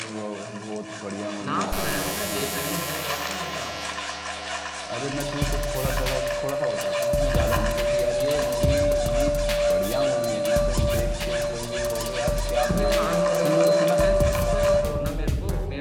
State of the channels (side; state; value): both; identical; correlation 1.00